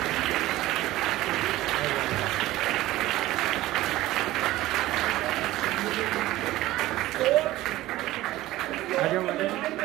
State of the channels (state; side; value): quieter; left; 16.6 dB